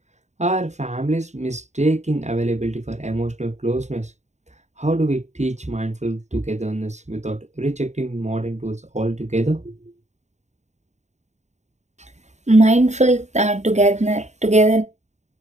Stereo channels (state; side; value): late; left; 0.33 ms